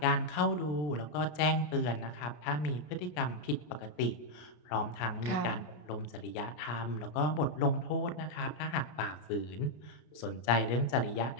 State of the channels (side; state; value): right; late; 33 ms